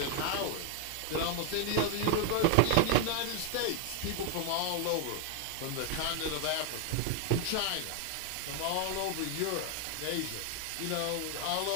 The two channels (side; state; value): both; different; correlation 0.00